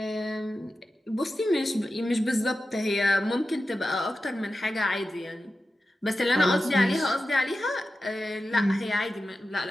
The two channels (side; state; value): both; normal; correlation 0.92